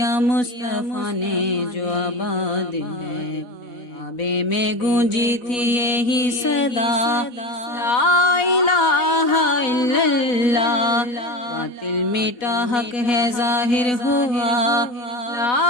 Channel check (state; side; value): late; right; 4.1 ms